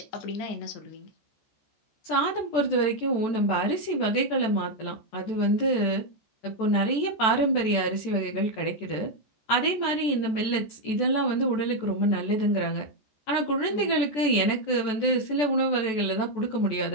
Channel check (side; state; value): right; late; 14 ms